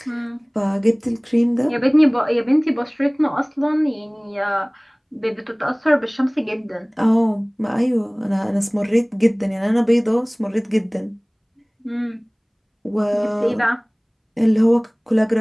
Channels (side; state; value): both; identical; correlation 1.00